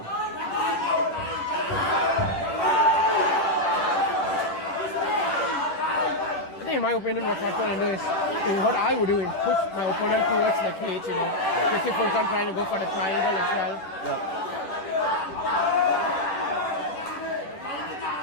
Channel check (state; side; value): late; right; 10 ms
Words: I think in my opinion what Fatko can do is, what I would do is push my opponent towards the cage, you know. Just if Furkan trying to go for the triangle as well. Yeah.